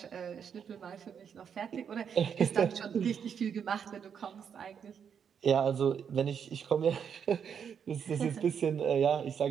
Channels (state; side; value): quieter; left; 7.5 dB